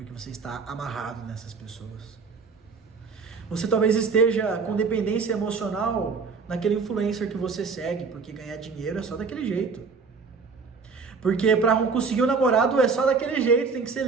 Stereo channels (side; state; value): left; quieter; 4.9 dB